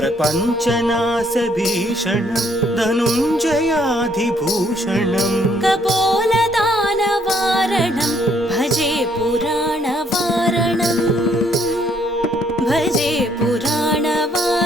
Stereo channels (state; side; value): normal; both; correlation 0.68